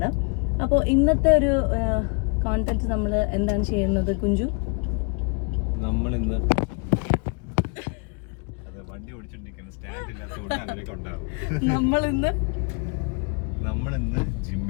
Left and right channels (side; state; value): right; quieter; 35.7 dB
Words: അപ്പോൾ ഇന്നത്തെ ഒരു കോണ്ടന്റ് നമ്മൾ എന്താണ് ചെയ്യുന്നത് കുഞ്ചു? നമ്മൾ ഇന്ന് വണ്ടി ഓടിച്ചോണ്ടിരിക്കുന്ന സ്റ്റാൻഡ് ഇല്ലാത്തതുകൊണ്ട് അങ്ങനെയൊക്കെ ഉണ്ടാവും. നമ്മളിന്ന്